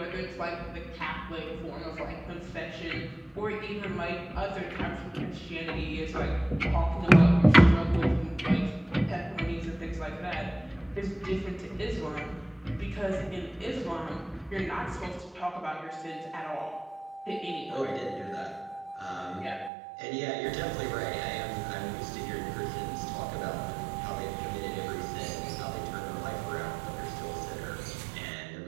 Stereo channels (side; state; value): left; drops out; at 19.7 s